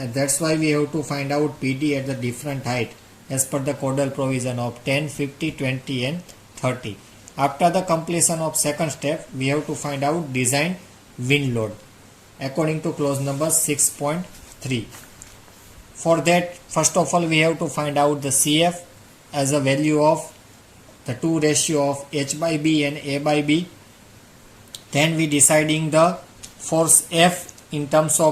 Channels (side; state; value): both; identical; correlation 1.00